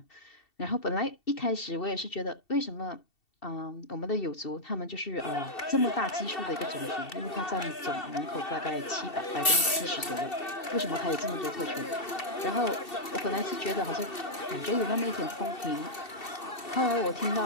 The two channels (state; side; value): late; right; 2.7 ms